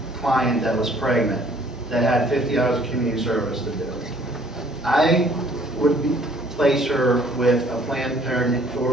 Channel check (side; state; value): both; normal; correlation 0.59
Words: client that was pregnant, that had 50 hours of community service to do, I would place her with a Planned Parenthood